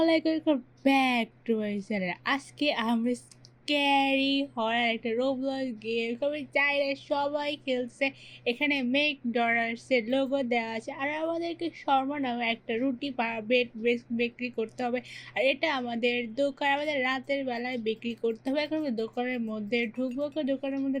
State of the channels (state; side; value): identical; both; correlation 1.00